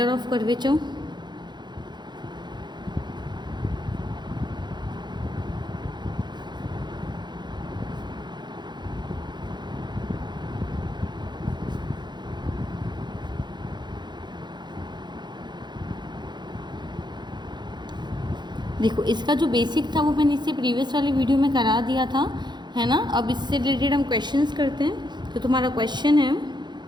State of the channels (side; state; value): left; late; 0.21 ms